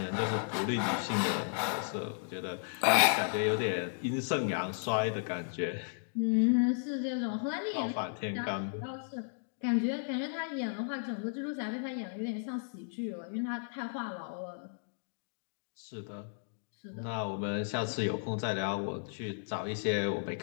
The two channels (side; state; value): right; silent; digital silence